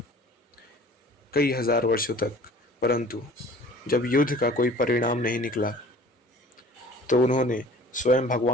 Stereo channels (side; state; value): both; normal; correlation 0.47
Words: कई हजार वर्षों तक, परंतु जब युद्ध का कोई परिणाम नहीं निकला तो उन्होंने स्वयं